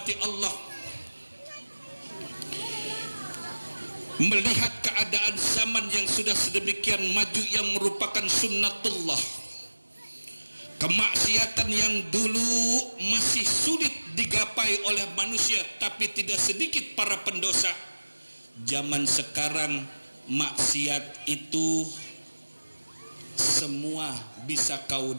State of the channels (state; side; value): inverted; both; correlation -1.00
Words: Allah, melihat keadaan zaman yang sudah sedemikian maju yang merupakan sunnatullah, kemaksiatan yang dulu masih sulit digapai oleh manusia tapi tidak sedikit para pendosa, zaman sekarang maksiat itu semua bisa kau